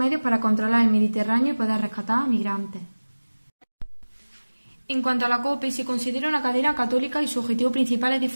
para controlar el Mediterráneo y poder rescatar a migrantes. En cuanto a la COPE, se considera una cadena católica y su objetivo principal es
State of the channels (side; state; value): both; inverted; correlation -1.00